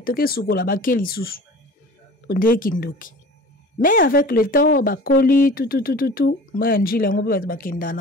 toke sukola bakeli susu. Onde kindoki. Mais avec le temps bakoli tout maya njili ngo pe bakenda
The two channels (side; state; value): both; normal; correlation 0.41